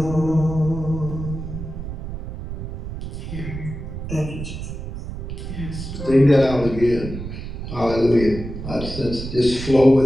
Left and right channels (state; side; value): noise; right; rumble, 8 dB below the sound